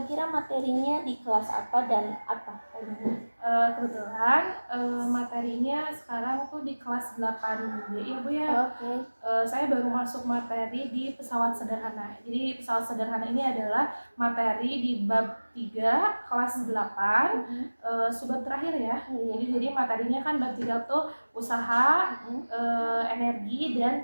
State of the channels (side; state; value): both; inverted; correlation -1.00